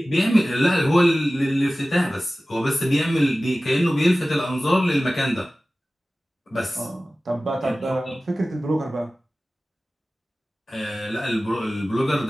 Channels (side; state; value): both; normal; correlation 0.97